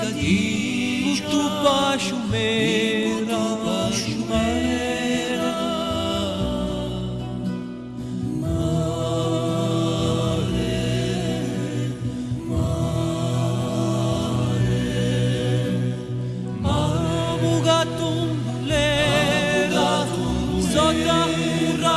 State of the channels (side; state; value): both; identical; correlation 1.00